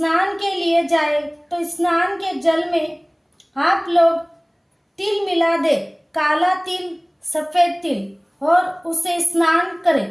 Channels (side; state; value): both; identical; correlation 1.00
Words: के लिए जाए तो स्नान के जल में आप लोग तिल मिला दे, काला तिल, सफेद तिल, और उसे स्नान